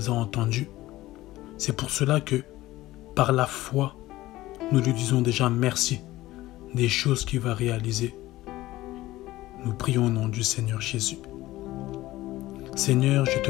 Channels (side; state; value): right; quieter; 16.9 dB